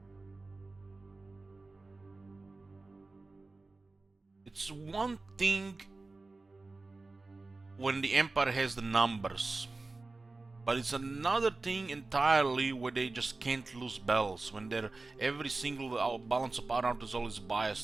It's one thing when the Empire has the numbers, but it's another thing entirely where they just can't lose battles, when every single balance of power is always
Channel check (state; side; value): quieter; left; 3.4 dB